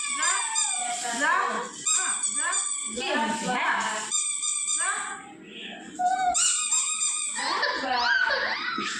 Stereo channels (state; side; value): identical; both; correlation 1.00